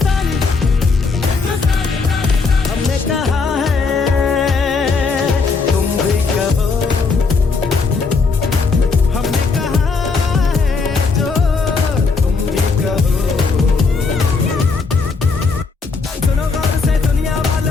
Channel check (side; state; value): right; quieter; 4.4 dB